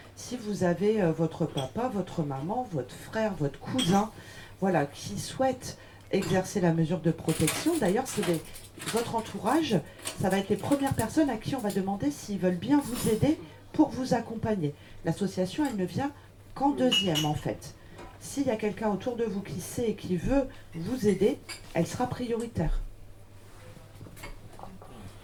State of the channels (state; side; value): identical; both; correlation 1.00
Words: Si vous avez votre papa, votre maman, votre frère, votre cousin, voilà, qui souhaitent exercer la mesure de protection, d'ailleurs, votre entourage, ça va être les premières personnes à qui on va demander s'ils veulent bien vous aider pour vous accompagner. L'association, elle ne vient qu'en deuxième, en fait. S'il y a quelqu'un autour de vous qui sait et qui veut vous aider, elle sera prioritaire.